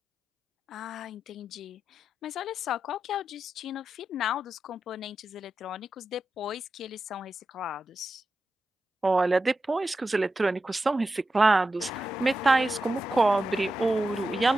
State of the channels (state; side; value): normal; both; correlation 0.90